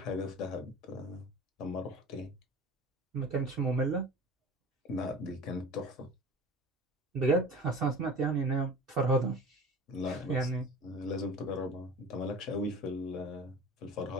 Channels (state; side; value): normal; both; correlation 0.38